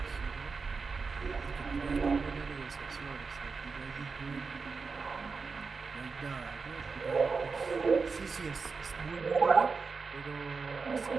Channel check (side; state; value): left; quieter; 4.8 dB